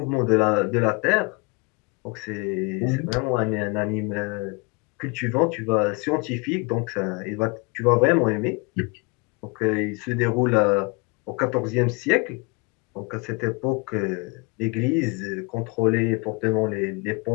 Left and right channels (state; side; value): quieter; right; 29.4 dB